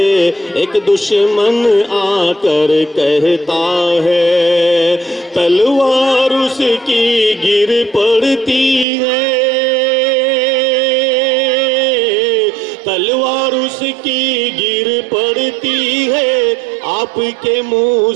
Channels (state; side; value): drops out; left; at 8.8 s